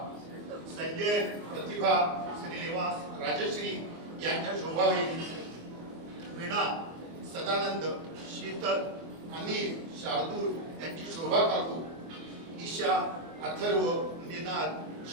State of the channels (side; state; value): left; late; 24 ms